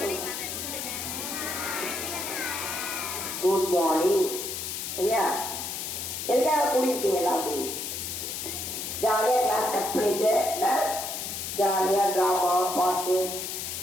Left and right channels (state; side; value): noise; left; hiss, 5 dB below the sound